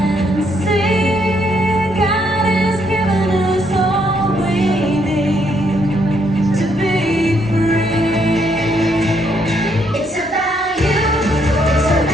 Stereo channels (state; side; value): normal; both; correlation 0.73